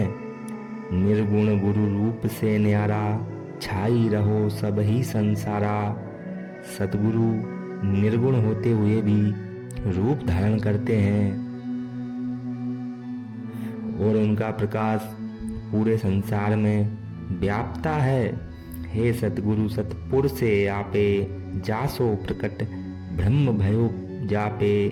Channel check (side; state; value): both; identical; correlation 1.00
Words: निर्गुण गुरु रूप से न्यारा, छाई रहो सब ही संसारा। सतगुरु निर्गुण होते हुए भी रूप धारण करते हैं और उनका प्रकाश पूरे संसार में व्यापता है। हे सतगुरु सतपुर से आपे, जासो प्रकट ब्रह्म भयो जापे।